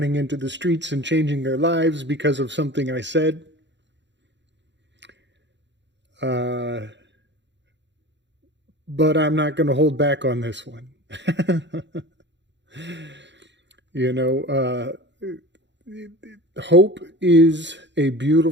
into the streets and changing their lives because of something I said. But I'm not going to hold back on this one. Hope is a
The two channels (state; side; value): late; left; 0.52 ms